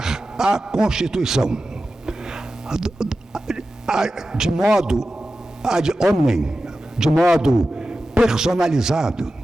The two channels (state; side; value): normal; both; correlation 0.93